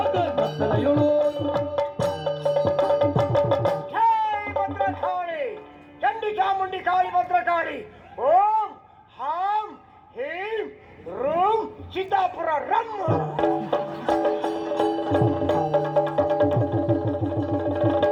ಕತ್ತಲೆಯೊಳು ಜೈ ಭದ್ರಕಾಳಿ ಚಂಡಿ ಚಾಮುಂಡಿ ಕಾಳಿ ಭದ್ರಕಾಳಿ ಓಂ ಹಾಂ ಹೀಂ room Siddapura rum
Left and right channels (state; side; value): identical; both; correlation 1.00